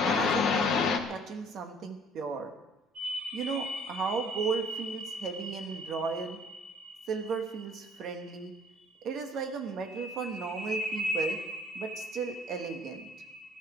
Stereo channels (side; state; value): both; normal; correlation 0.55